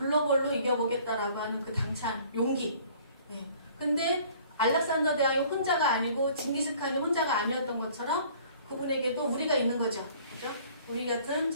이겨보겠다라고 하는 그 당찬 용기. 네. 근데 알렉산더 대왕이 혼자가 아니고 징기스칸이 혼자가 아니었던 것처럼 그분에게도 우리가 있는 거죠. 그죠? 우리 같은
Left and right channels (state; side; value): inverted; both; correlation -0.54